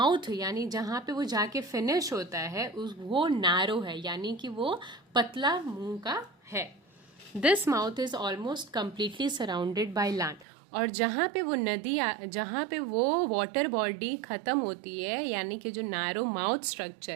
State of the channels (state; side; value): drops out; left; at 10.5 s